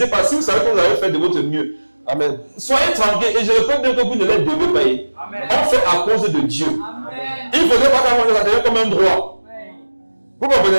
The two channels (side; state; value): both; inverted; correlation -1.00